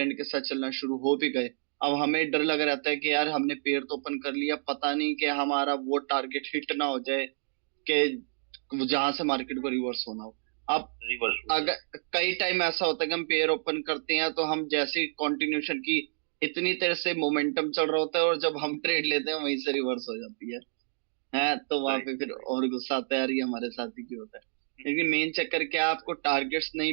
के साथ चलना शुरू हो भी गए, अब हमें डर लग रहता है कि यार हमने पेड़ तो ओपन कर लिया, पता नहीं कि हमारा वो टारगेट हिट ना हो जाए, कि जहां से मार्केट को रिवर्स होना हो। अब रिवर्स हो जाए। अगर कई टाइम ऐसा होता है कि हम पेयर ओपन करते हैं तो हम जैसे कंटिन्यूशन की इतनी देर से मोमेंटम चल रहा होता है, और जब हम ट्रेड लेते हैं वहीं से रिवर्स हो जाती है तो वहां राइट पे फिर राइट। और गुस्सा आता है, यार ये हमारे साथ ही क्यों होता है। लेकिन मेन चक्कर क्या है, आपको टारगेट्स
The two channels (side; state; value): left; silent; digital silence